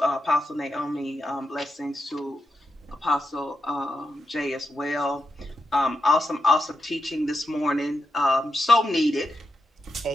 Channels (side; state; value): both; normal; correlation 0.86